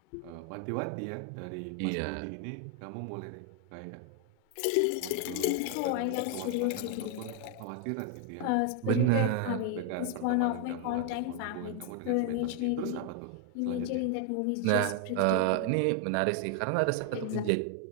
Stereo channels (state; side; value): different; both; correlation 0.00